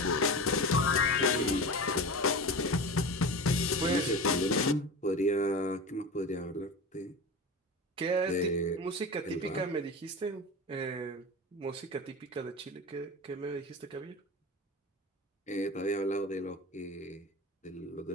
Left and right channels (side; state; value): both; normal; correlation 0.28